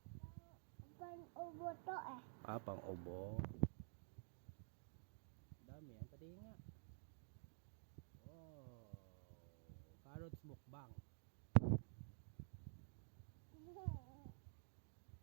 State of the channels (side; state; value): left; silent; digital silence